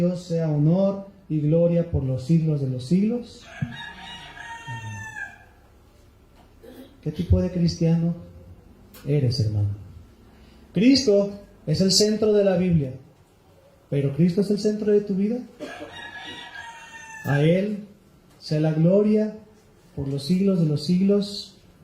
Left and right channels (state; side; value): identical; both; correlation 1.00